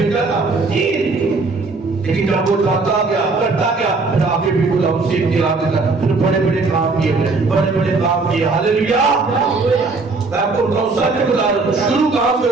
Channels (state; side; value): quieter; left; 3.8 dB